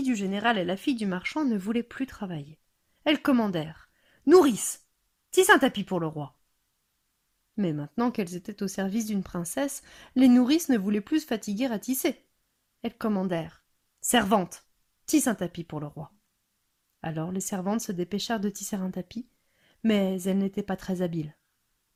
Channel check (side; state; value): both; identical; correlation 1.00